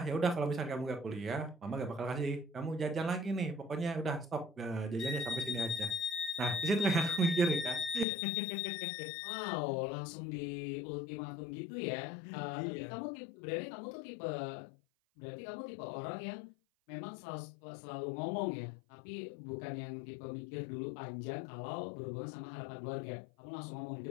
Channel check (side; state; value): right; drops out; at 8.1 s